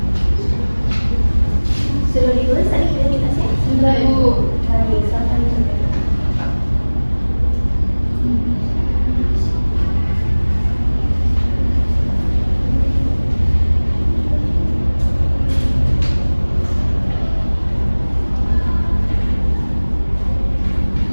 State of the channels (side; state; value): both; inverted; correlation -1.00